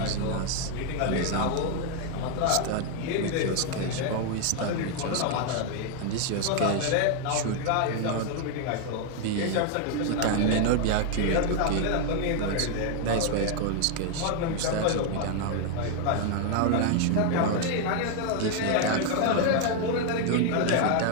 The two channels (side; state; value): both; different; correlation 0.00